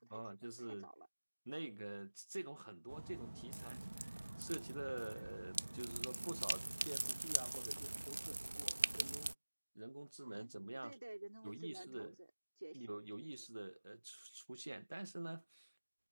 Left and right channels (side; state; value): both; inverted; correlation -1.00